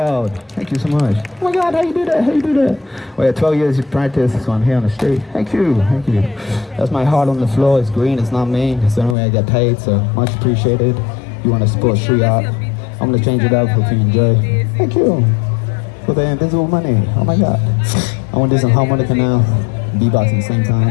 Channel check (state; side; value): drops out; right; at 9.2 s